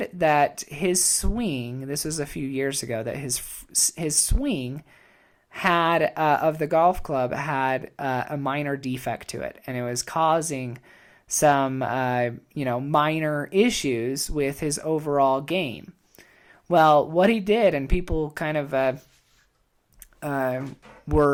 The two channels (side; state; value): both; identical; correlation 1.00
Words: that his swing, this was a few years ago, that his swing had of the golf club had a minor defect to it, and it was causing some minor issues with his overall game. Well, what he did, and people kind of